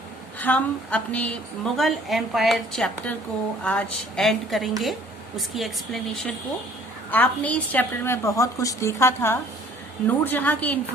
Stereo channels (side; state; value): both; normal; correlation 0.55